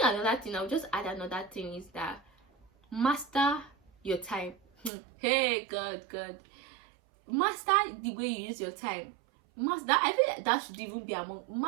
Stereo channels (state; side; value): drops out; left; at 4.9 s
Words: another thing, I'll just add another thing, is that master your time. Hey, God, master the way you use your time. Master, I feel like that should even be among,